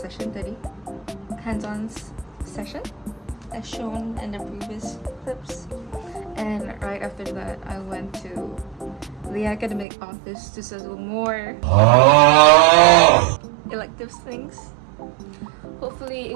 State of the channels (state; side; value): drops out; left; at 9.9 s